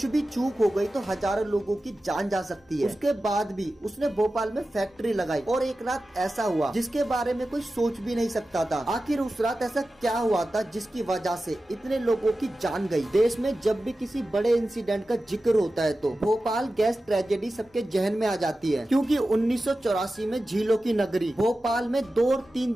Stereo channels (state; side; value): normal; both; correlation 0.94